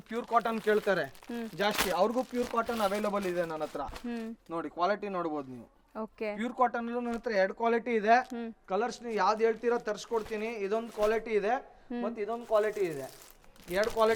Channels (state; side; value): identical; both; correlation 1.00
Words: ಪ್ಯೂರ್ ಕಾಟನ್ ಕೇಳ್ತಾರೆ ಜಾಸ್ತಿ, ಅವ್ರಿಗೂ ಪ್ಯೂರ್ ಕಾಟನ್ ಅವೈಲಬಲ್ ಇದೆ ನನ್ನ ಹತ್ರ. ನೋಡಿ ಕ್ವಾಲಿಟಿ ನೋಡ್ಬೋದು ನೀವು. ಪ್ಯೂರ್ ಕಾಟನ್ ಅಲ್ಲೂ ನನ್ನ ಹತ್ರ 2 ಕ್ವಾಲಿಟಿ ಇದೆ. ಕಲರ್ಸ್ ನೀವು ಯಾವ್ದು ಹೇಳ್ತೀರಾ ತರಿಸ್ಕೊಡ್ತೀನಿ. ಇದೊಂದು ಕ್ವಾಲಿಟಿ ಇದೆ, ಮತ್ತೆ ಇದೊಂದು ಕ್ವಾಲಿಟಿ ಇದೆ. 2